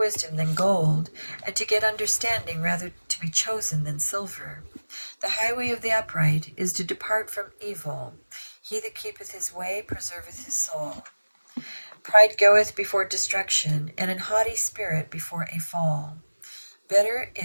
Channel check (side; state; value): both; inverted; correlation -1.00